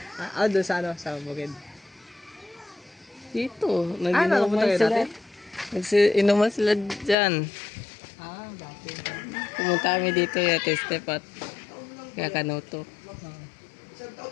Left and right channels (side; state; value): right; drops out; at 7.2 s